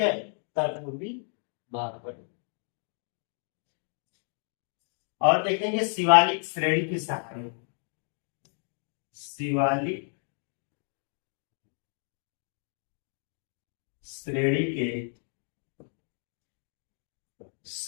उत्तर पूर्वी भाग पर। और देखेंगे शिवालिक श्रेणी की शाखाएं, शिवालिक श्रेणी के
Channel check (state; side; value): silent; right; 57 dB below the other